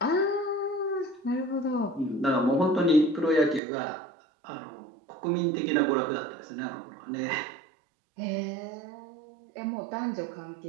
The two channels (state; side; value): drops out; left; at 3.6 s